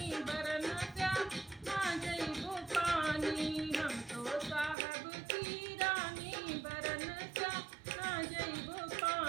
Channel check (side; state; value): left; drops out; at 4.8 s